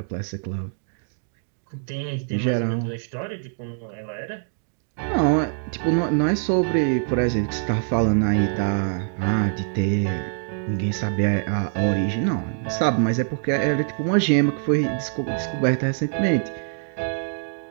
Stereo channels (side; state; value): left; silent; 63 dB below the other